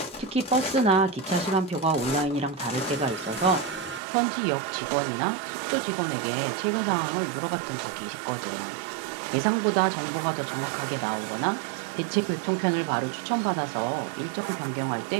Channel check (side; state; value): left; drops out; at 4.0 s